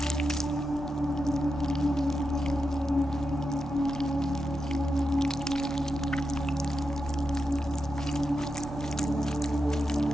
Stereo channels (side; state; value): both; normal; correlation 0.88